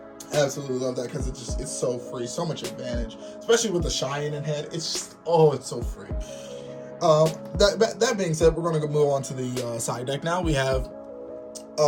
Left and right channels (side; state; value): both; identical; correlation 1.00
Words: Absolutely love that because it's so free, so much advantage, especially with the Cheyenne in head. It's just, it's so free. That being said, we're going to move on to the side deck now. We have